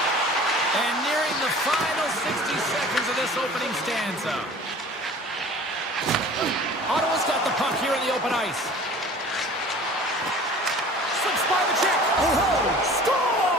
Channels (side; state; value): both; normal; correlation 0.45